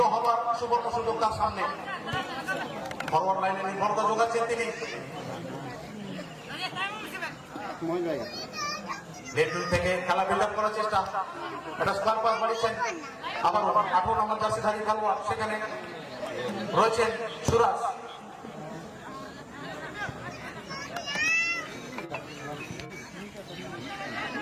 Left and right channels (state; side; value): identical; both; correlation 1.00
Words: হবার সুবর্ণ সুযোগ তার সামনে। ফরওয়ার্ড লাইনে নির্ভরতা যোগাচ্ছেন তিনি। লেফট থেকে খেলা বিল্ড আপ করার চেষ্টা, এটা স্কোয়ার পাস বাড়িয়েছেন। আবার 18 নম্বর জার্সিধারী খেলোয়াড় সেখানে রয়েছেন সুরাজ।